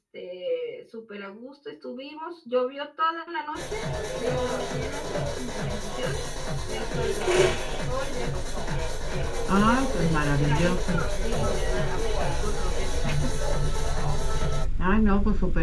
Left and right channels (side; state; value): both; identical; correlation 1.00